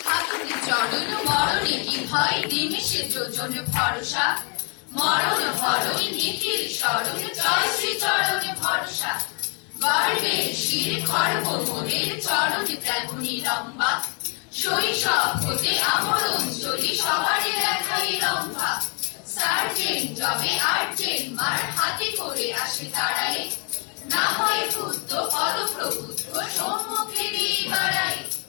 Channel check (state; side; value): quieter; right; 36.2 dB